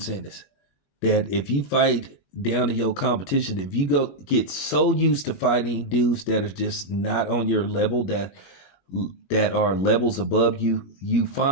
Ennis. That if you fight down to your competition, if you get so used to fighting dudes that are just not on your level, that are levels above you, you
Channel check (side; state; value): right; late; 21 ms